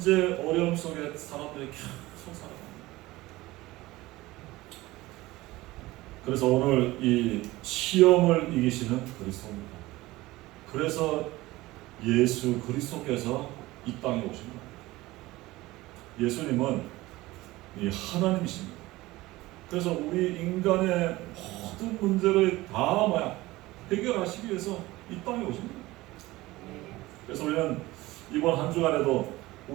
어려움 속에 사람들이 계속 살아갑니다. 그래서 오늘 이 시험을 이기시는 그리스도입니다. 그래서 예수 그리스도께서 이 땅에 오신 겁니다. 예수님은 이 하나님이십니다. 그래서 우리 인간의 모든 문제를 다 해결하시기 위해서 이 땅에 오십니다. 그래서 우리는 이번 한 주간에도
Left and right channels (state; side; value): quieter; left; 19.0 dB